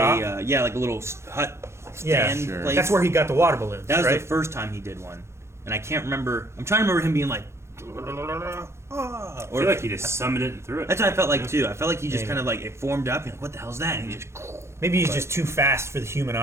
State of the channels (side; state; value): left; late; 0.13 ms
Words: like a little hut Yeah, stand sure. place. That's where he got the water balloons. That was right? the first time he did one, and I can't remember. I'm trying to remember him being like, I feel like he just summoned it and threw it. that's what I felt like too. I felt like he just Maybe. kind of like it formed up, and like, what the hell's that? And he just Maybe he's just too fast for the human